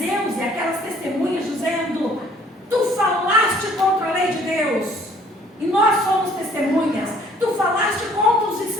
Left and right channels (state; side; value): normal; both; correlation 0.58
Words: e aquelas testemunhas dizendo: tu falaste contra a lei de Deus e nós somos testemunhas. Tu falaste contra os